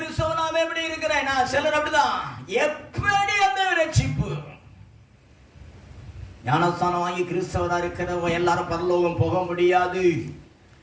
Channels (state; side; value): identical; both; correlation 1.00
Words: எப்படி இருக்கிறேன் நான், சிலர் அப்படிதான், எப்படி அந்த ரட்சிப்பு? ஞானஸ்தானம் வாங்கி கிறிஸ்தவரா இருக்கிறவங்க எல்லாரும் பரலோகம் போக முடியாது.